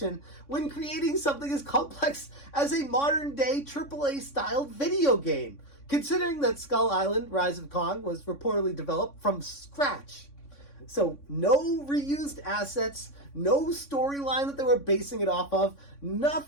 when creating something as complex as a modern-day AAA-styled video game, considering that Skull Island Rise of Kong was reportedly developed from scratch. So no reused assets, no storyline that they were basing it off of,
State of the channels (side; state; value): right; late; 3.6 ms